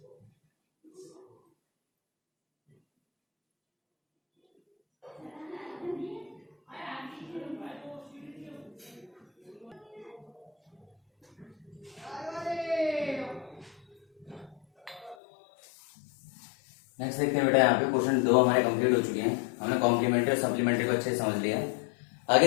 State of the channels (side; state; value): right; drops out; at 15.2 s